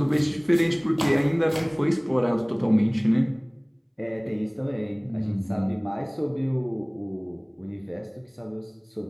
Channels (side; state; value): both; identical; correlation 1.00